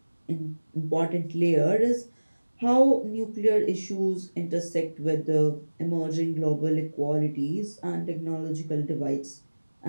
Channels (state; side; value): inverted; both; correlation -1.00